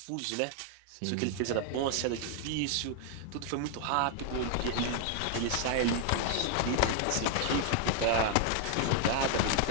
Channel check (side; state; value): both; different; correlation 0.00